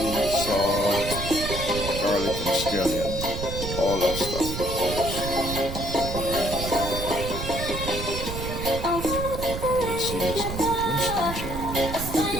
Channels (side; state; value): right; noise; rumble, 6 dB below the sound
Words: salt, garlic and scallion, all that stuff. You see this on Winston GeL.